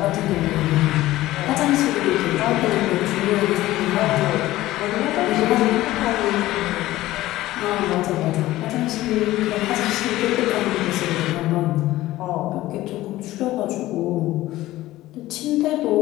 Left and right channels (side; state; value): right; quieter; 16.3 dB